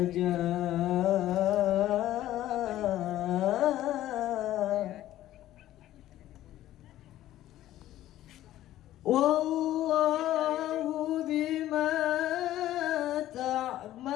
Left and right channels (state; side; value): quieter; right; 13.8 dB